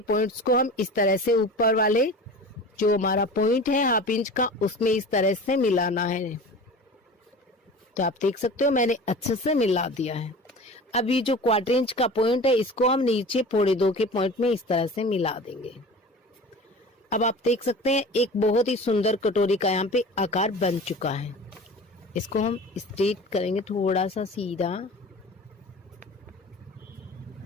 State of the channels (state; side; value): normal; both; correlation 0.37